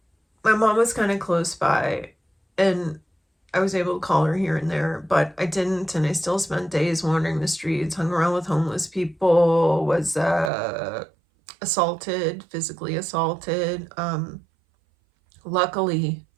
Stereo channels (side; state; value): left; drops out; at 10.5 s